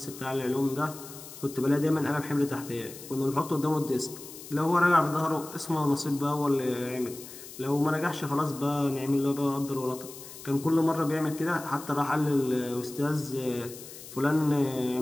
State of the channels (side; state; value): left; noise; hiss, 15 dB below the sound